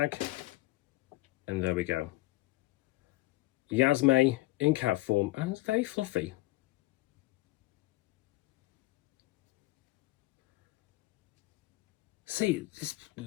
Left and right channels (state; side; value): quieter; right; 19.3 dB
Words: And there we go. Yasme in cat form, and it's very fluffy. See, this,